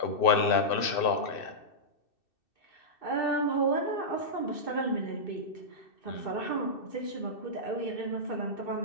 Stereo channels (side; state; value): right; late; 2.6 ms